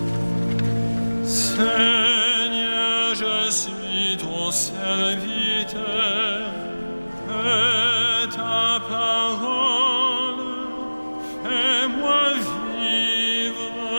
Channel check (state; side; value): inverted; both; correlation -1.00